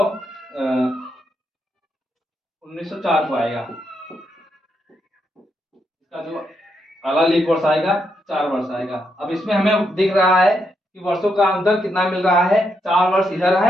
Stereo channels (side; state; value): both; normal; correlation 0.80